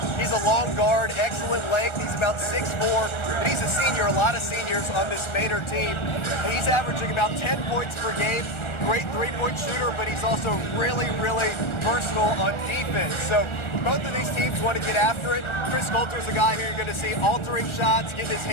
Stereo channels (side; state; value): right; late; 1.4 ms